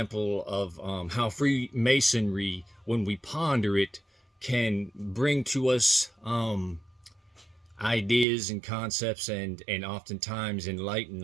of how Freemasonry, when we ponder it, can bring to us ideas and concepts and oftentimes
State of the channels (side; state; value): left; drops out; at 8.2 s